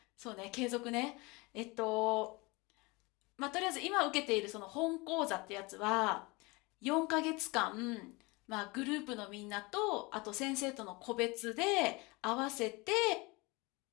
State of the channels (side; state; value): right; quieter; 25.5 dB